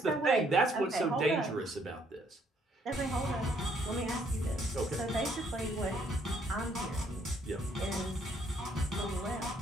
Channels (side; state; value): both; normal; correlation 0.67